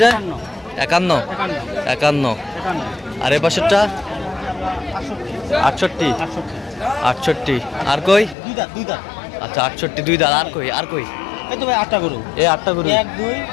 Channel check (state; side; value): drops out; right; at 8.3 s